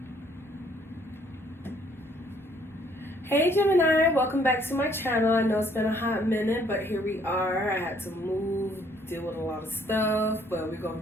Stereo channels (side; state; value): both; normal; correlation 0.63